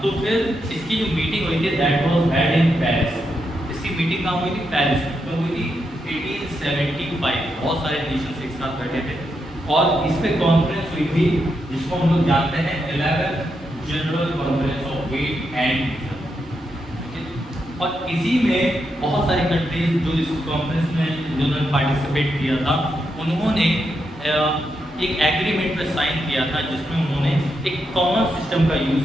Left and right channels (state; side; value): normal; both; correlation 0.83